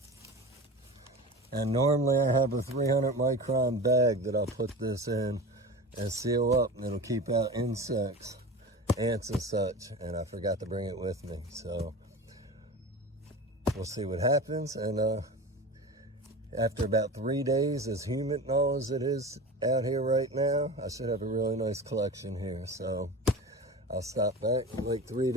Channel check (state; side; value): normal; both; correlation 0.32